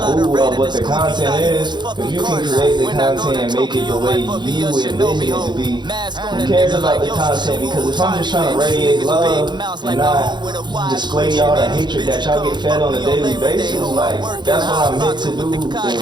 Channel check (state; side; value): late; left; 0.21 ms